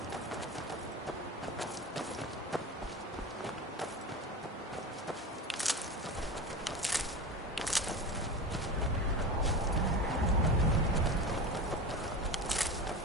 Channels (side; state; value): both; normal; correlation 0.28